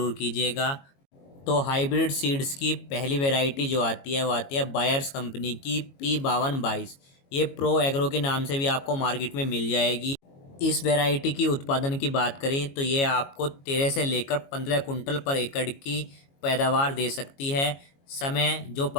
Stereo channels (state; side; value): late; right; 22 ms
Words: कीजिएगा। तो हाइब्रिड सीड्स की पहली वैरायटी जो आती है वो आती है बायर्स कंपनी की P5222। ये प्रो एग्रो के नाम से भी आपको मार्केट में मिल जाएगी। इस वैरायटी की उत्पादन की बात करें तो ये आपको 13 से लेकर 15 कुंटल पर एकड़ की पैदावार दे सकती है। समय जो